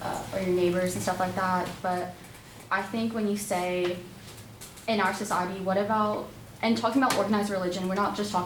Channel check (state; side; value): identical; both; correlation 1.00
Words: or your neighbors and stuff like that. But I think when you say, in our society, what about, and talking about organized religion, we're not just